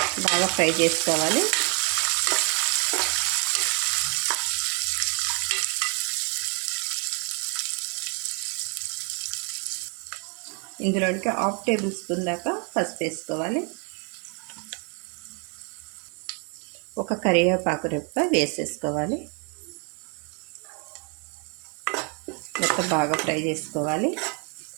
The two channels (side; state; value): left; quieter; 36.4 dB